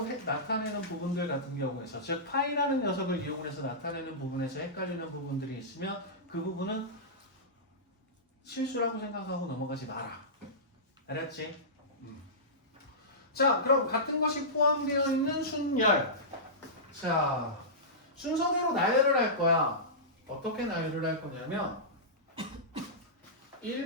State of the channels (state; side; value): normal; both; correlation -0.17